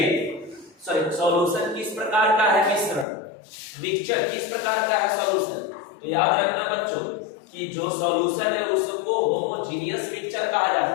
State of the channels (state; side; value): drops out; right; at 3.1 s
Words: सॉल्यूशन किस प्रकार का है? मिश्रण मिक्सचर किस प्रकार का है सॉल्यूशन? तो याद रखना बच्चों कि जो सॉल्यूशन है उसको होमोजेनियस मिक्सचर कहा